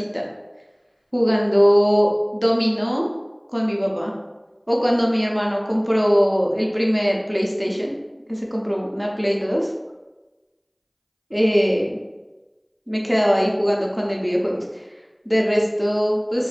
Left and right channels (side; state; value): both; identical; correlation 1.00